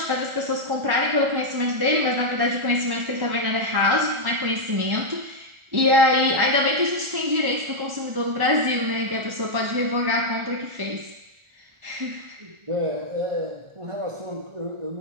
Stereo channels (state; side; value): late; left; 1.4 ms